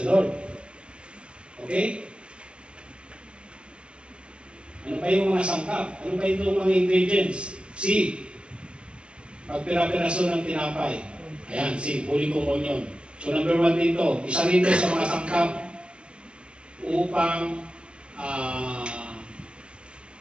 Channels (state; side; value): late; left; 0.053 ms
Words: Lord. Okay? Ano pa yung mga sangkap? Ano pa yung mga ingredients? C. Pagpira-piraso ng tinapay. Ayan, C. Holy Communion. So number 1 dito. Isa rin sa mga sangkap upang